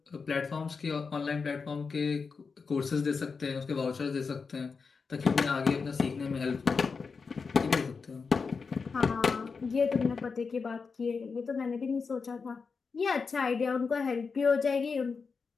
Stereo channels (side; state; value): right; quieter; 5.0 dB